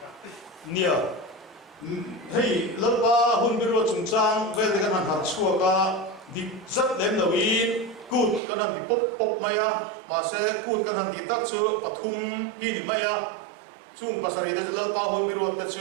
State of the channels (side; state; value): left; drops out; at 8.4 s